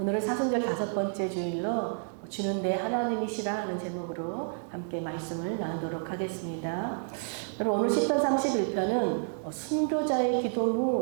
사순절 5번째 주일로 주는 내 하나님이시라 하는 제목으로 함께 말씀을 나누도록 하겠습니다. 여러분, 오늘 시편 31편은 순교자의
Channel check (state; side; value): silent; left; digital silence